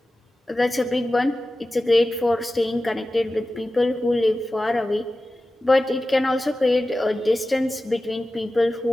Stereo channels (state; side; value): normal; both; correlation 0.95